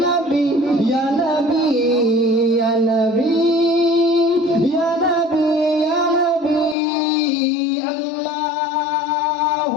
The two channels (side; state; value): right; drops out; at 6.8 s